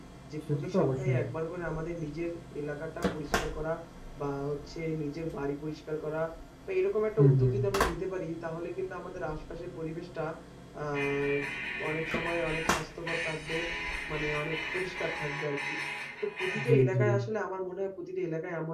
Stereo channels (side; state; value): both; identical; correlation 1.00